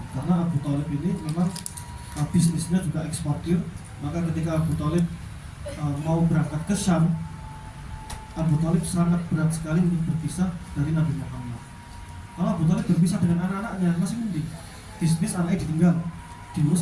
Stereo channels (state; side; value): identical; both; correlation 1.00